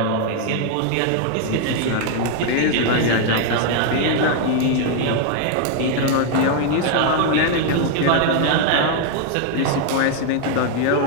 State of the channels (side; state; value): both; different; correlation 0.00